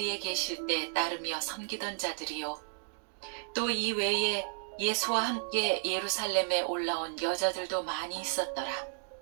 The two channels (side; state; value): left; silent; digital silence